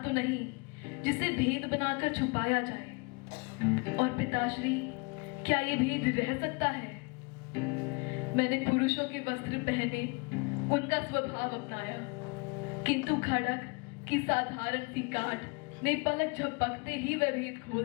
तो नहीं जिसे भेद बनाकर छुपाया जाए। और पिताश्री, क्या ये भेद रह सकता है? मैंने पुरुषों के वस्त्र पहने, उनका स्वभाव अपनाया, किंतु खड़क की साधारण सी काट ने पलक झपकते ही वह भेद खोल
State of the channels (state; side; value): quieter; right; 30.3 dB